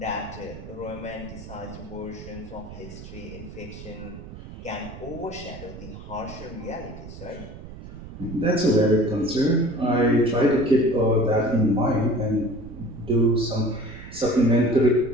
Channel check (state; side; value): noise; right; rumble, 14 dB below the sound